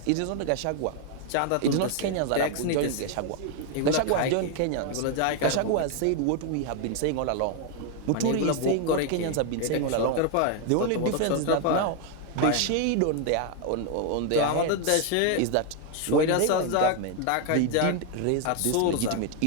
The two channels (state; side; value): different; both; correlation 0.01